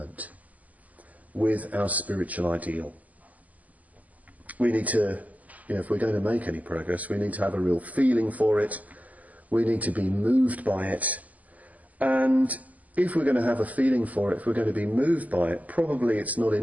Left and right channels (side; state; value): left; late; 0.077 ms